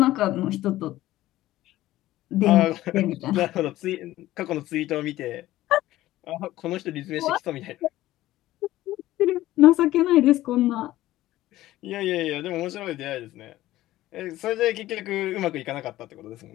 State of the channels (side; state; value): right; quieter; 15.6 dB